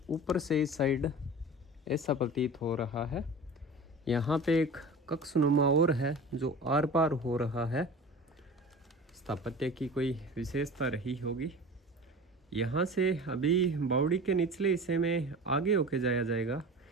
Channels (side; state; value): both; normal; correlation 0.36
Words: ऊपर से इस साइड ऐसा प्रतीत हो रहा है। यहाँ पे एक कक्षनुमा और है जो आर पार हो रहा है। स्थापत्य की कोई विशेषता रही होगी। यहाँ से अभी बावड़ी के निचले हिस्से में आगे होके जाया जाएगा,